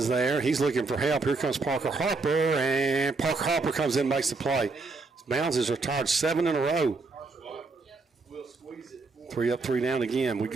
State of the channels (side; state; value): left; quieter; 3.8 dB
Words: there. He's looking for help. Here comes Parker Harper, and Parker Harper comes in and makes the play. Bounds is retired 7 in a row. 3 up, 3 down again. We